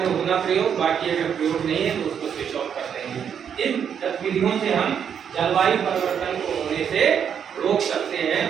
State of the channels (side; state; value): left; quieter; 7.9 dB